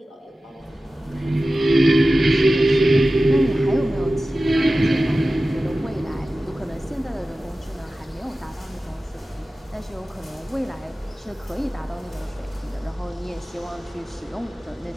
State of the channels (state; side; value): normal; both; correlation 0.95